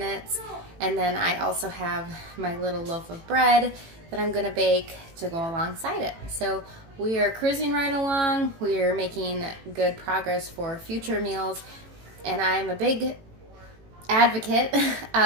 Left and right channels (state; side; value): late; left; 18 ms